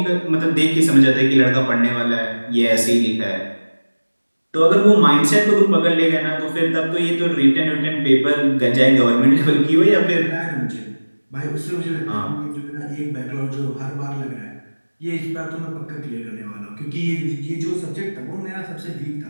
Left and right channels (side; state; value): both; inverted; correlation -1.00